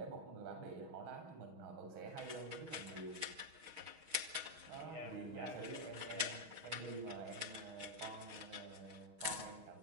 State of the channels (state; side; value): late; left; 6.3 ms